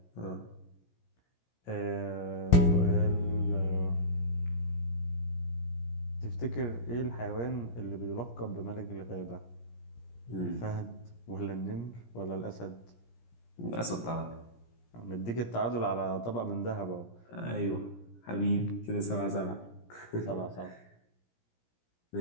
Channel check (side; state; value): right; late; 17 ms